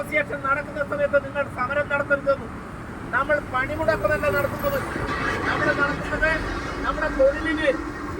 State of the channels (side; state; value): both; identical; correlation 1.00